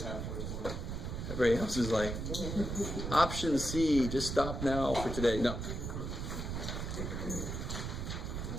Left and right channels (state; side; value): noise; right; rumble, 4 dB below the sound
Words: Everybody else is like, option C, just stop now for today. No.